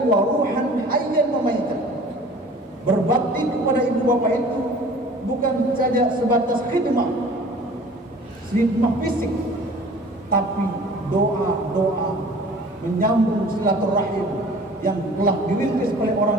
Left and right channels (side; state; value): both; normal; correlation 0.46